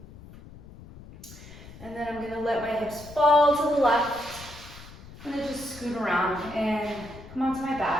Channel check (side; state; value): left; noise; rumble, 18 dB below the sound